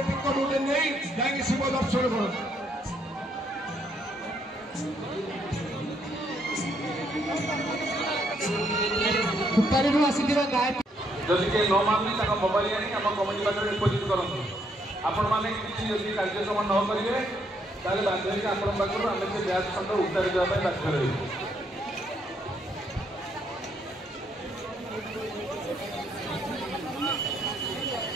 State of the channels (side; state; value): both; normal; correlation 0.72